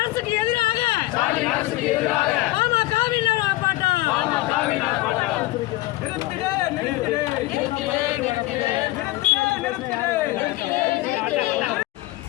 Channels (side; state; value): right; quieter; 18.4 dB